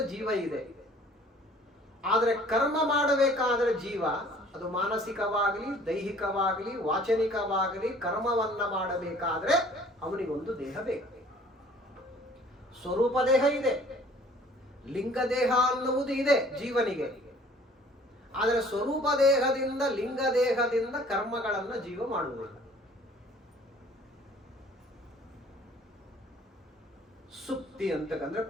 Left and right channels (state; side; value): normal; both; correlation 0.53